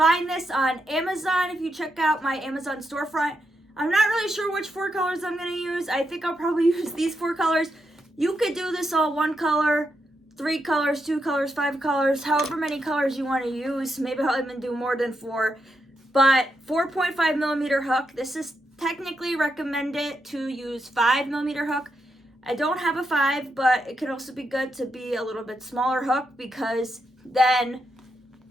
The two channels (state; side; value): normal; both; correlation 0.83